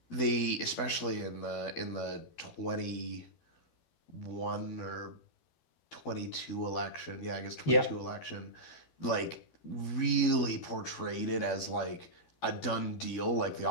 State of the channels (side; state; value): right; late; 12 ms